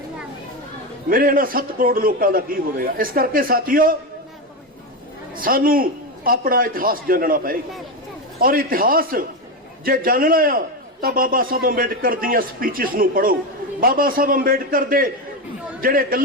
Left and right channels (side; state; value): both; normal; correlation 0.13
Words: मेरे इन्हां 7 करोड़ लोगों का की होवेगा। इस करके साथियों सानू अपना इतिहास जानना पएगा और इतिहास जे जानना आ तो बाबा साहब अंबेडकर दीयां स्पीचेस नूं पढ़ो, बाबा साहब अंबेडकर दे ਜਿਹੜੇ